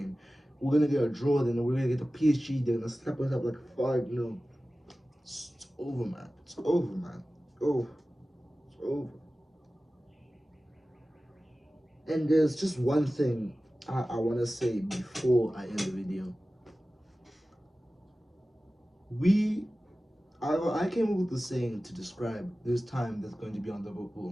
We're gonna get a draw, then we're gonna get the PSG. They're gonna slap us up like 5-0. It's over, man. It's over, man. Oh, it's over. And there's just one thing I want to say before I end the video. I came up with the saying to describe this time that's going to be on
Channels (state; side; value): normal; both; correlation 0.96